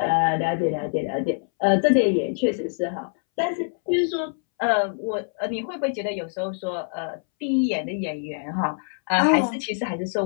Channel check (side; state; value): right; silent; 62 dB below the other